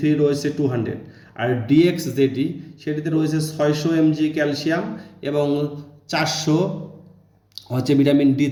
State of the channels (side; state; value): both; identical; correlation 1.00